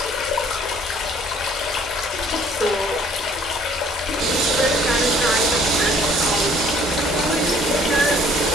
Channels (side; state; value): both; normal; correlation 0.58